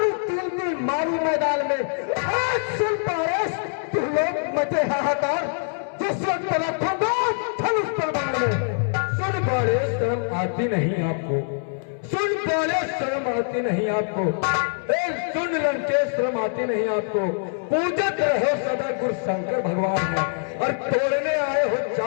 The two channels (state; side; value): silent; right; 61 dB below the other